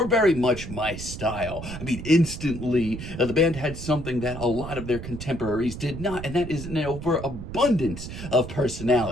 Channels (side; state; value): right; noise; rumble, 9 dB below the sound